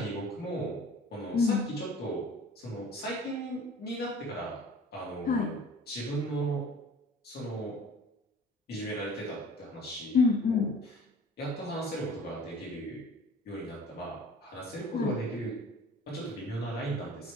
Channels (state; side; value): normal; both; correlation 0.47